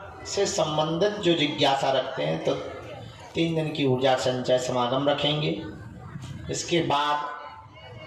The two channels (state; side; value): identical; both; correlation 1.00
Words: से संबंधित जो जिज्ञासा रखते हैं तो 3 दिन की ऊर्जा संचय समागम रखेंगे। इसके बाद